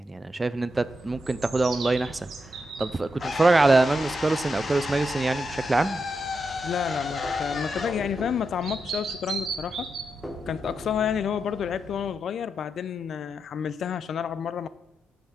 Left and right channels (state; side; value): normal; both; correlation 0.85